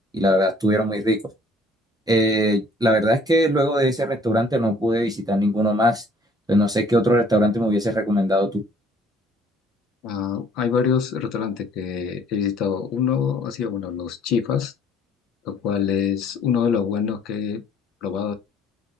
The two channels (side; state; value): both; normal; correlation 0.58